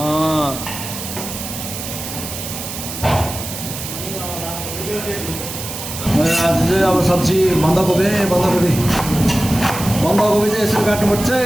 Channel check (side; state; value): right; noise; hiss, 8 dB below the sound